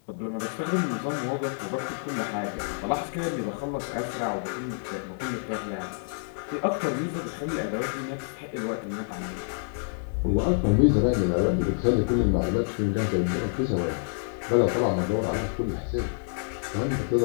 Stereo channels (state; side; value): silent; right; digital silence